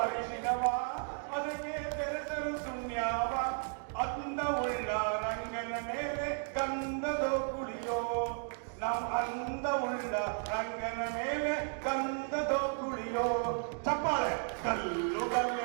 ಅರಿಶಿನವ ಅದಕ್ಕೆ ಬೆರೆಸಲು ಸುಣ್ಯಾವ ಅಂದವುಳ್ಳ ರಂಗನ ಮೇಲೆ ಗಂಧದೋ ಕುಳಿಯೋ ಅಂದವುಳ್ಳ ರಂಗನ ಮೇಲೆ ಗಂಧದೋ ಕುಳಿಯೋ ಚಪ್ಪಾಳೆ ಕಲ್ಲು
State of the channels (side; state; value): left; silent; 55 dB below the other